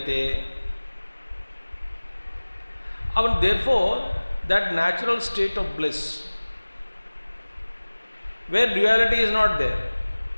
And therefore, that natural state of bliss, where duality is not there.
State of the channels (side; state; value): both; inverted; correlation -1.00